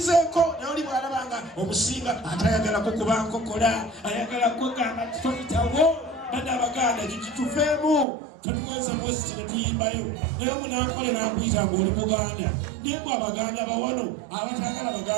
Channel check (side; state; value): left; drops out; at 8.1 s